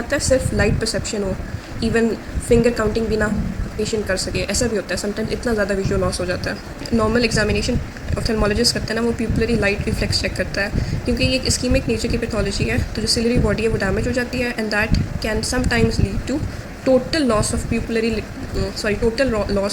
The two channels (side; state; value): both; identical; correlation 1.00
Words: है, सिर्फ लाइट परसेप्शन हो, इवन फिंगर काउंटिंग भी ना पेशेंट कर सके, ऐसा भी होता है समटाइम्स, इतना ज़्यादा विजुअल लॉस हो जाता है। नॉर्मल एग्जामिनेशन ऑफ्थेल्मोलॉजिस्ट करता है ना, वो प्यूपिलरी लाइट रिफ्लेक्स चेक करता है, क्योंकि ये एक इस्कीमिक नेचर की पैथोलॉजी है, तो जो सिलरी बॉडी है वो डैमेज हो जाती है, and that can sometimes lead to total loss of pupillary